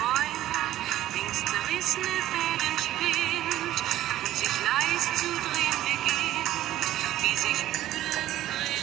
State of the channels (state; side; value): quieter; left; 13.8 dB